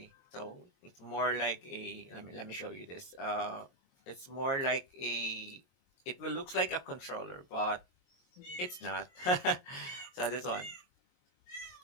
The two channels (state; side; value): late; right; 22 ms